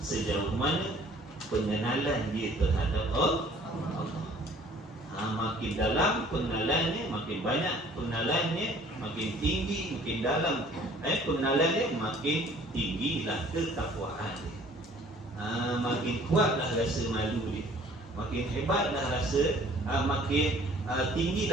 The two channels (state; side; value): normal; both; correlation 0.54